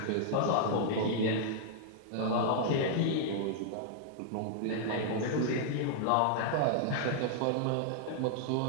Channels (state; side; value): different; both; correlation -0.01